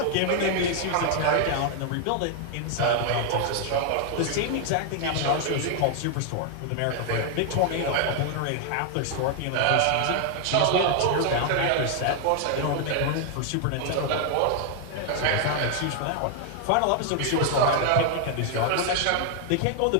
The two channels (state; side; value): different; both; correlation 0.00